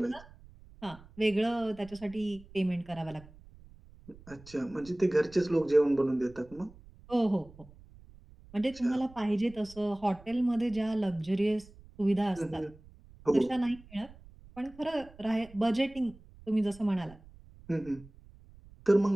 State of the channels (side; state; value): right; noise; rumble, 22 dB below the sound